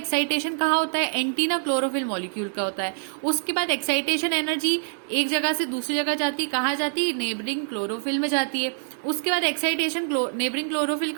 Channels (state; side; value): silent; left; digital silence